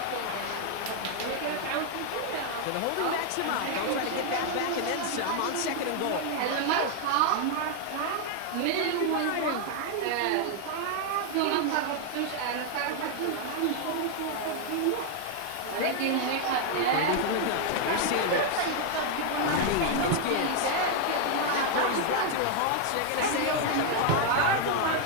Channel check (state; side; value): different; both; correlation 0.00